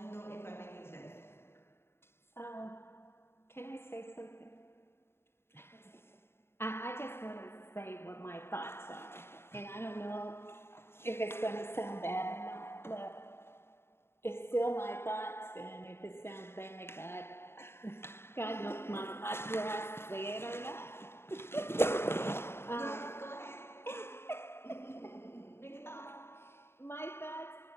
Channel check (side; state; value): right; late; 0.12 ms